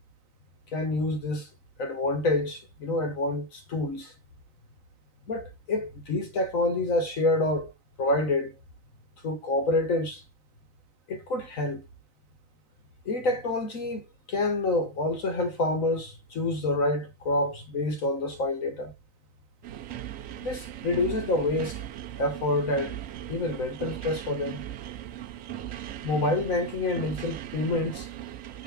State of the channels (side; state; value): right; late; 3.9 ms